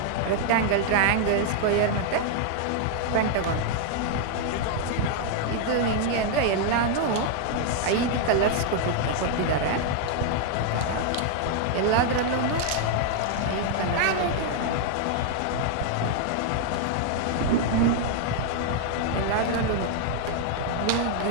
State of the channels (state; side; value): different; both; correlation 0.00